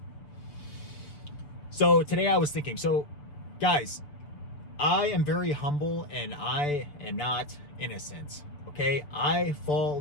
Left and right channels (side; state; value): right; late; 6.8 ms